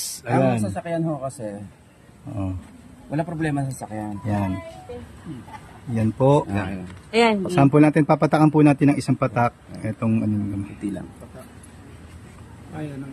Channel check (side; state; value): both; identical; correlation 1.00